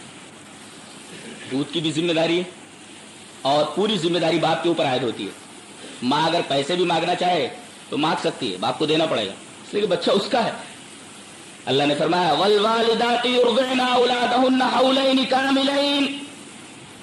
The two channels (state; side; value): identical; both; correlation 1.00